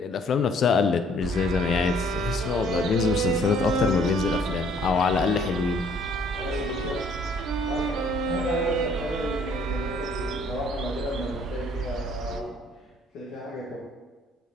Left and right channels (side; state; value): both; normal; correlation 0.60